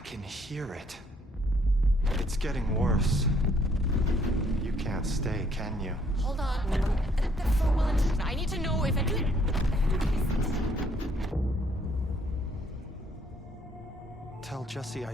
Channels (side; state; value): both; normal; correlation 0.66